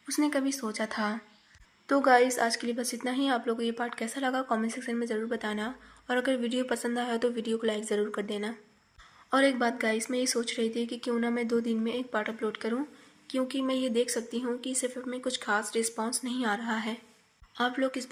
उसने कभी सोचा था। तो गाइस, आज के लिए बस इतना ही। आप लोगों को ये पार्ट कैसा लगा कमेंट सेक्शन में ज़रूर बताना, और अगर वीडियो पसंद आया तो वीडियो को लाइक ज़रूर कर देना। और एक बात गाइस, मैं ये सोच रही थी कि क्यों ना मैं 2 दिन में एक पार्ट अपलोड करूं, क्योंकि मैं ये देख सकती हूँ कि इस एफ में कुछ खास रिस्पॉन्स नहीं आ रहा है। आप लोग इस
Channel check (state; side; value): identical; both; correlation 1.00